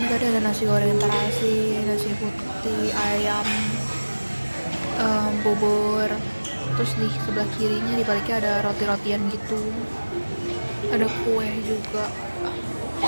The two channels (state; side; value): inverted; both; correlation -1.00